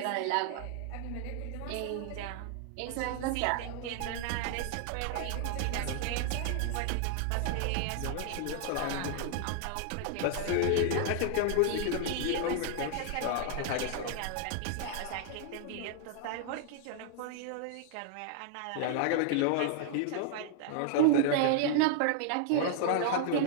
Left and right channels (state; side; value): different; both; correlation -0.01